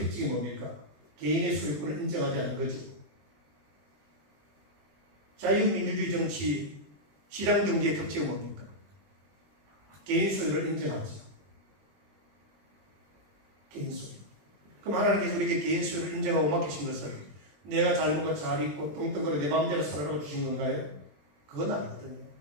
특징이 뭡니까? 개인의 소유권을 인정하지 않는 거죠. 자유민주주의 정치, 시장경제의 특징은 뭡니까? 개인 소유를 인정하죠. 개인 소유. 그럼 하나님께서 우리에게 개인 소유를 인정하고 맡기신 것을 내가 잘 먹고 잘 입고 뚱뚱거려 내 마음대로 살아라고 주신 건가요? 그건 아니거든요.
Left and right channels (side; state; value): left; late; 21 ms